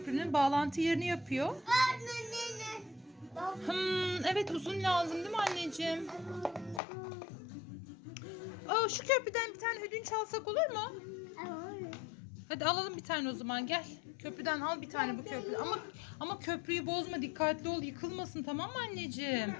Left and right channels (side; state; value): right; drops out; at 6.8 s